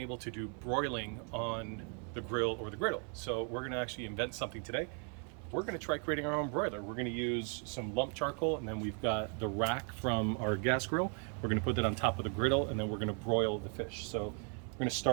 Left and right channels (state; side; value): quieter; left; 38.4 dB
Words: to do broiling on the grill or the griddle. So we're going to actually invent something today. We're going to try creating our own broiler. We're going to use some lump charcoal, and then we've got the rack from our gas grill. We're going to put that on top of the griddle, and then we're going to broil the fish. So we're going to